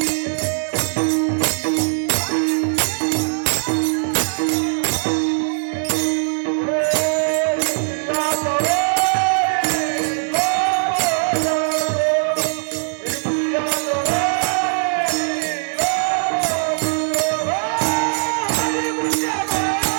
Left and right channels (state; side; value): silent; left; 58 dB below the other